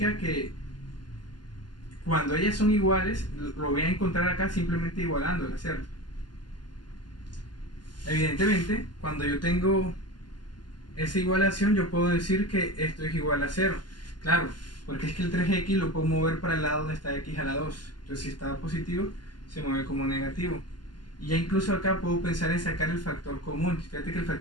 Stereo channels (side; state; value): right; late; 0.71 ms